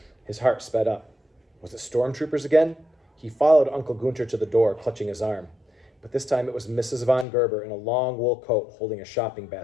His heart sped up. Was it stormtroopers again? He followed Uncle Gunter to the door, clutching his arm. But this time it was Mrs. von Gerber in a long wool coat holding a shopping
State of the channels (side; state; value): right; drops out; at 7.2 s